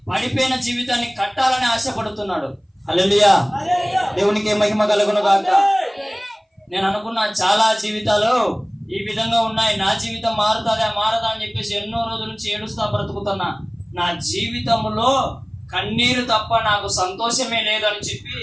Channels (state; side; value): identical; both; correlation 1.00